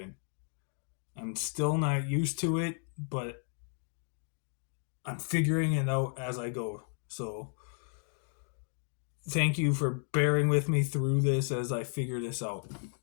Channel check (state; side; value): silent; right; 56 dB below the other